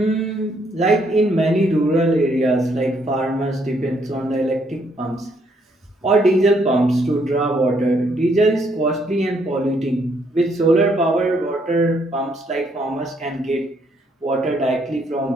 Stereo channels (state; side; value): normal; both; correlation 0.71